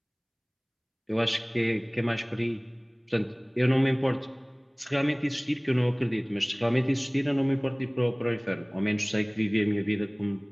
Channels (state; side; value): identical; both; correlation 1.00